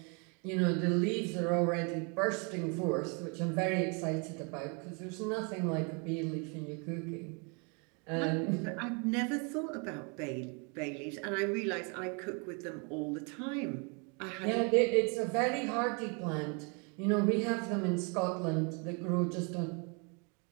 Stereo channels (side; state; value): left; quieter; 34.7 dB